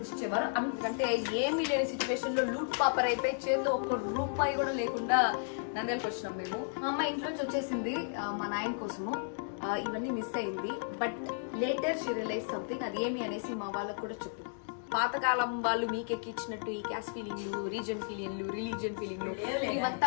అందుకంటే ఏమీ లేని సిచ్యువేషన్ లో లూట్ పాపర్ అయిపోయి చేతిలో 1 రూపాయి కూడా లేకుండా నంద్యాలకు వచ్చినాం మేము. మా అమ్మ ఇంట్లోంచి వచ్చేసింది మా నాయన కోసము. ఇవన్నీ మిస్ అయింది. But later she realize something. అది ఏమి అనేసి మా వాళ్ళకు కూడా చెప్పింది. పాతకాలం వాళ్ళు మీకెక్కిచ్చినట్టు ఈ క్యాస్ట్ ఫీలింగ్లు, రీజన్ ఫీలింగ్లు, రిలీజియన్ ఫీలింగ్లు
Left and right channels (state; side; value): silent; right; digital silence